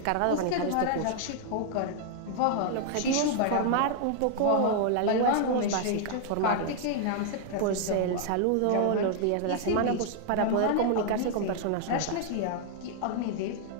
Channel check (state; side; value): different; both; correlation -0.01